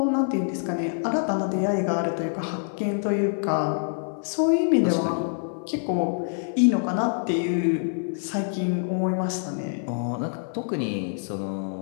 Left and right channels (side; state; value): right; silent; digital silence